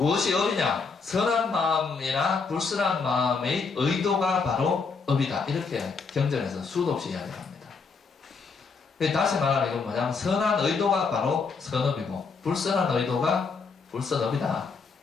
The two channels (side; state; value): right; quieter; 4.9 dB